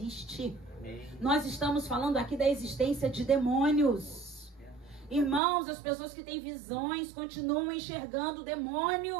Nós estamos falando aqui da existência de demônios. Irmãos, as pessoas que têm visões continuam enxergando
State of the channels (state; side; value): drops out; left; at 5.4 s